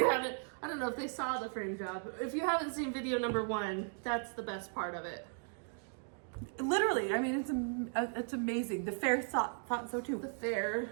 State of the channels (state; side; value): silent; left; 53 dB below the other